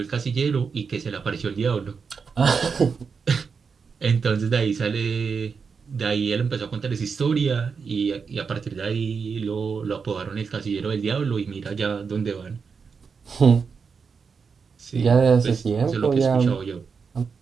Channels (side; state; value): left; quieter; 5.6 dB